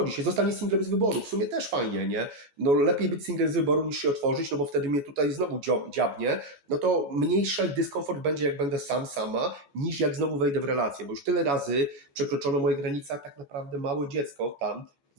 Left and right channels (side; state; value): left; late; 14 ms